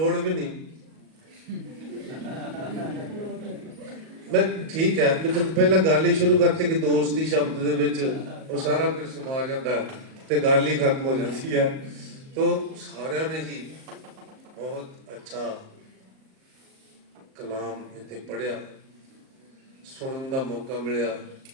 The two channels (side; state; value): left; late; 38 ms